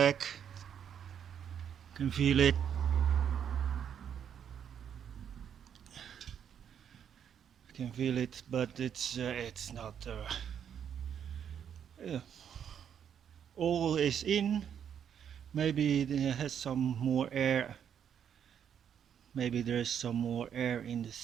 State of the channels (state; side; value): quieter; left; 8.5 dB